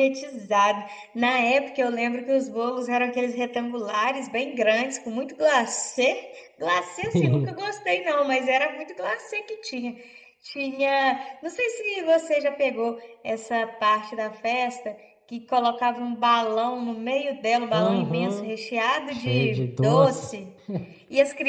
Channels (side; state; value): both; identical; correlation 1.00